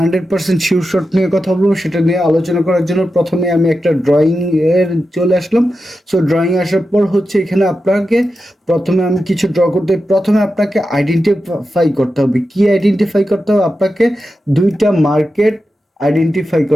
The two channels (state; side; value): normal; both; correlation 0.90